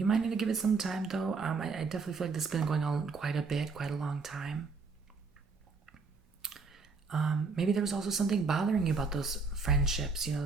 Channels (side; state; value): left; quieter; 4.4 dB